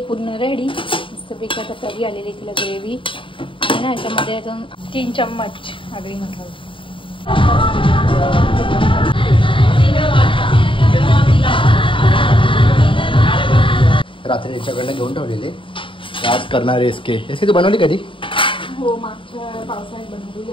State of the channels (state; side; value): late; right; 0.25 ms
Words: पूर्ण रेडी. मस्तपैकी आता तरी आलेली तिला ग्रेव्ही आणि ना याच्यामध्ये 3 चम्मच आगरी मसाला. रात्री याच्याकडनं घेऊन ठेवलेले, आज करणार आहे इसके. तू बनवली कधी? हो, मागच्या पावसाळ्यात बनवली